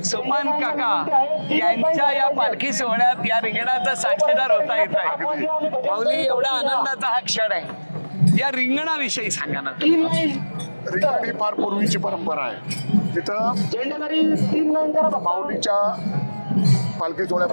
सोपान काका यांच्या या पालखी सोहळ्यात या रिंगणाचा साक्षीदार होता येत आहे. माऊली, एवढा आनंदाचा हा क्षण आहे, या रिंगणाविषयी सांगा ना. रिंगण ही फार पूर्वीची परंपरा आहे. तिथं माऊलीच्या पालखी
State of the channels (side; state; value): both; inverted; correlation -1.00